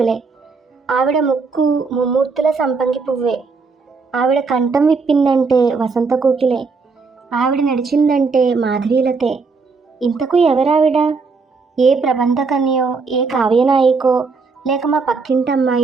ఆవిడ ముక్కు ముమ్మూర్తుల సంపంగి పువ్వే. ఆవిడ కంఠం విప్పిందంటే వసంత కోకిలే. ఆవిడ నడిచిందంటే మాధవీలతే. ఇంతకు ఎవరావిడ? ఏ ప్రబంధకన్యో, ఏ కావ్యనాయికో, లేక మా పక్కింటి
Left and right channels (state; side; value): quieter; left; 4.6 dB